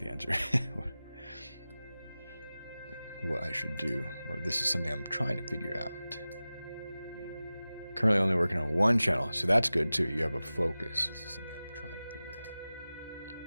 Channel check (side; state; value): both; inverted; correlation -0.96